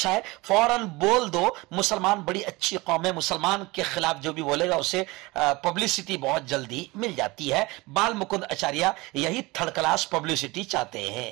है, फौरन बोल दो, मुसलमान बड़ी अच्छी कौम है, मुसलमान के खिलाफ जो भी बोलेगा उसे पब्लिसिटी बहुत जल्दी मिल जाती है। बाल मुकुंद आचार्य यही थर्ड क्लास पब्लिसिटी चाहते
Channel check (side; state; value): left; quieter; 22.6 dB